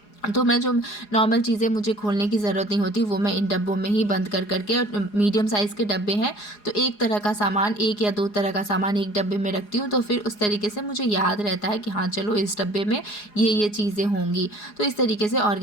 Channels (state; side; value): late; right; 4.8 ms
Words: तो मैं जो नॉर्मल चीज़ें मुझे खोलने की ज़रूरत नहीं होती वो मैं इन डब्बों में ही बंद कर करके, और मीडियम साइज़ के डब्बे हैं तो एक तरह का सामान, 1 या 2 तरह का सामान एक डब्बे में रखती हूँ, तो फिर उस तरीके से मुझे याद रहता है कि हाँ चलो इस डब्बे में ये चीज़ें होंगी। तो इस तरीके से